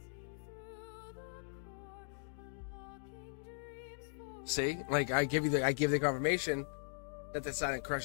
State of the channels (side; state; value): right; silent; digital silence